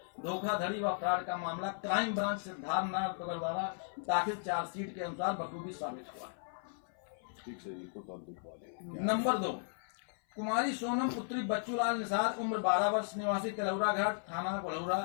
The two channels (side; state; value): right; silent; 54 dB below the other